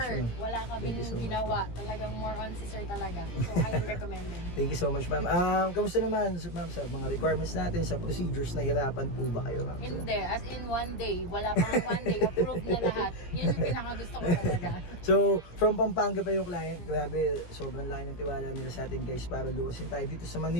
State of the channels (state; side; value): late; right; 17 ms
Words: ma'am. Wala Thank you kaming so much, ginawa. Talagang more on si sir talaga. So, highly recommended. Thank you so much, ma'am. Kamusta naman, ma'am, sa mga requirements natin, sa procedures, nahirapan po ba kayo, ma'am? Hindi. As in, one day. Wala pang one day. Approved na lahat. Yan yung pinakagusto ko talaga. So, from Pampanga pa yung client. Grabe, sobrang laki ng tiwala nila sa atin guys para luwasin tayo dito sa